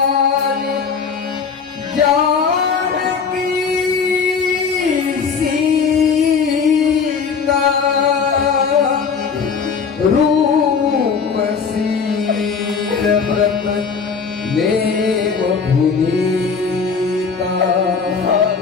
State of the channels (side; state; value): right; quieter; 5.7 dB